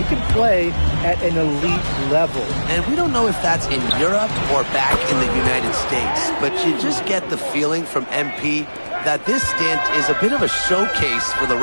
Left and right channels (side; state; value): both; inverted; correlation -1.00